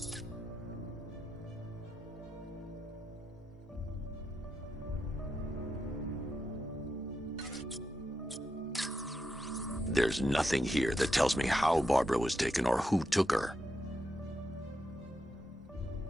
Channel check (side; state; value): both; normal; correlation 0.85